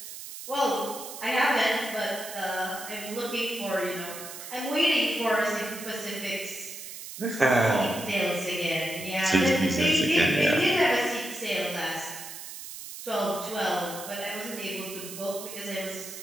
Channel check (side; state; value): right; noise; hiss, 11 dB below the sound